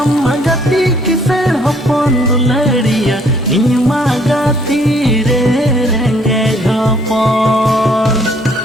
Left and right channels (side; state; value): both; normal; correlation 0.63